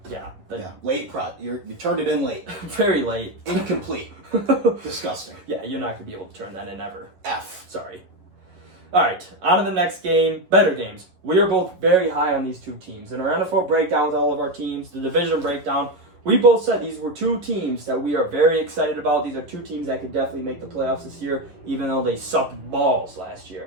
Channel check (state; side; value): late; left; 11 ms